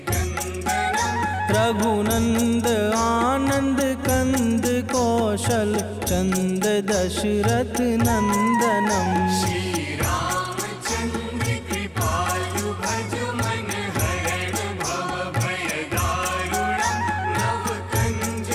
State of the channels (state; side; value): identical; both; correlation 1.00